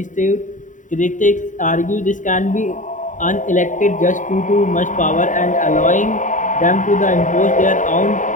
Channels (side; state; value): right; late; 0.37 ms